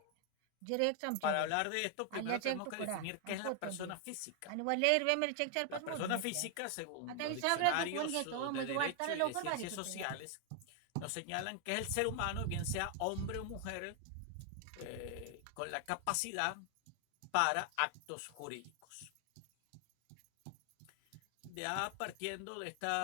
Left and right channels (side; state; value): both; different; correlation 0.00